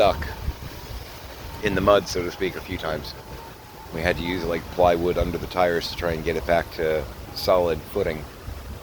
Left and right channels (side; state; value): both; identical; correlation 1.00